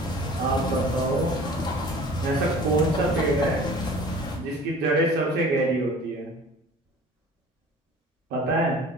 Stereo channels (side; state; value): both; normal; correlation 0.45